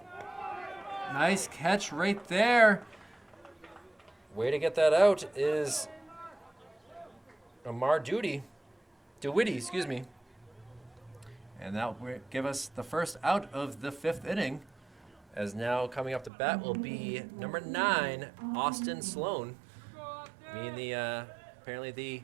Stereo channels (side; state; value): left; drops out; at 16.3 s